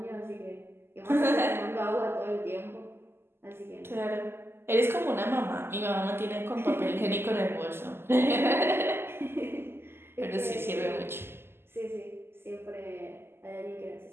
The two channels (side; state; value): left; late; 0.12 ms